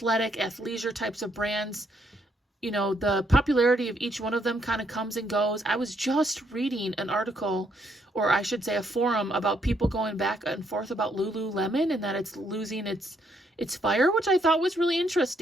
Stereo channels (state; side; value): normal; both; correlation 0.73